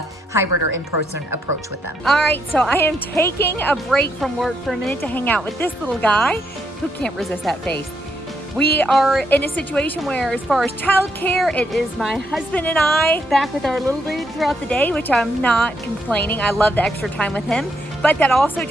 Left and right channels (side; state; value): both; normal; correlation 0.77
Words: hybrid or in-person approach with them. All right, so I am taking a break from work for a minute to hang out with this little guy who can't resist that face. We are in a situation where, as far as childcare, it is my husband and I back with our little dude throughout the day, which I'm not complaining. I love the extra time with him. But that also